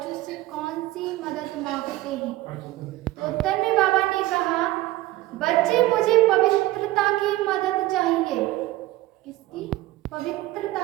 से कौन सी मदद मांगते हैं? तो उत्तर में बाबा ने कहा, बच्चे मुझे पवित्रता की मदद चाहिए। किसकी?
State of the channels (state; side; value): quieter; left; 17.2 dB